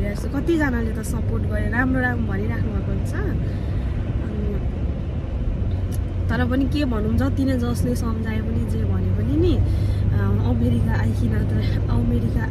छु। कतिजनाले त सपोर्ट गरेर राम्रो भनिराख्नु भएको हुन्छ। तर पनि के भनौँ, जति नै जसले सम्झाए पनि जे भने पनि नि अमेरिका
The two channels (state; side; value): identical; both; correlation 1.00